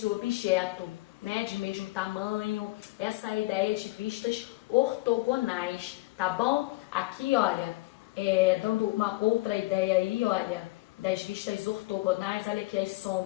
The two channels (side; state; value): right; quieter; 21.2 dB